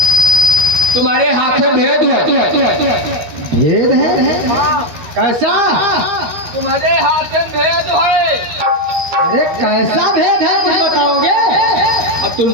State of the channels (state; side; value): late; left; 13 ms